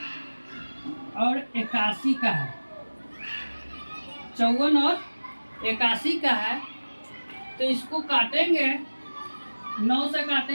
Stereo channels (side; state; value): both; inverted; correlation -1.00